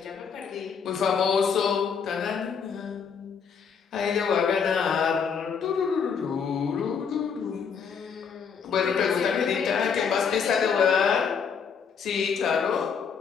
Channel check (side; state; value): right; quieter; 6.5 dB